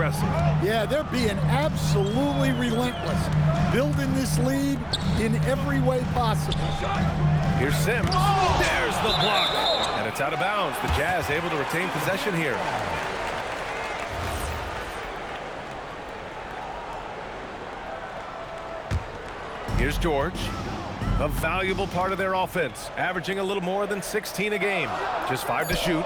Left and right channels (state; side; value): identical; both; correlation 1.00